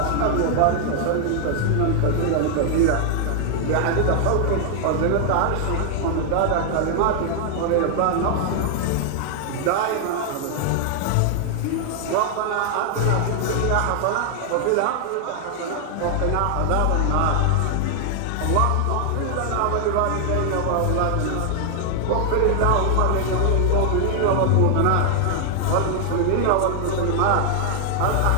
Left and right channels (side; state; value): both; different; correlation 0.00